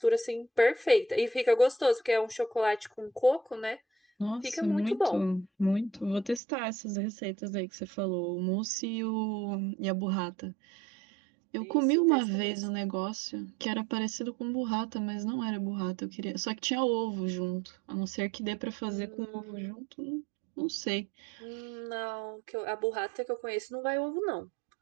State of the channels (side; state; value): left; drops out; at 6.4 s